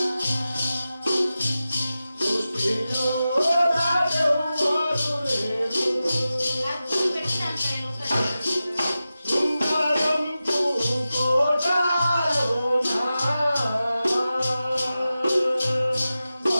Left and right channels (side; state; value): both; inverted; correlation -0.94